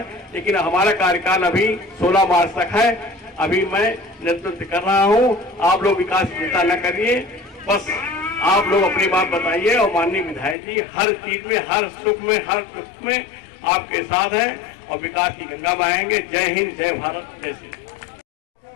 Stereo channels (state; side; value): drops out; right; at 10.6 s